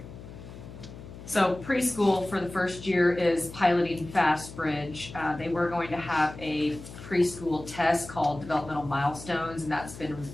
So preschool for the first year is piloting Fastbridge. They were going to have a preschool test called developmental milestones, and that's been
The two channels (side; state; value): left; noise; hum, 14 dB below the sound